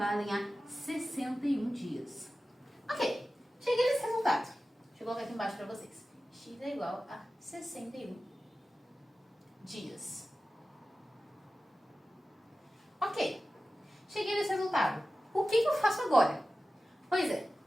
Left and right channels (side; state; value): both; normal; correlation 0.95